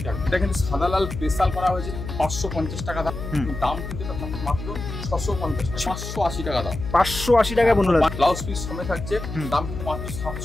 টাকা। এটা কিন্তু সাদা লাল স্পেশাল করা হয়েছে 550 টাকা দাম। দাম কিন্তু এটা মাত্র 650 টাকা, 580 টাকা দাম, 580 টাকা বন্ধুরা। ব্লাউজ পিস সমেত থাকছে, দাম কিন্তু মাত্র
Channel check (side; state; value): left; noise; hum, 8 dB below the sound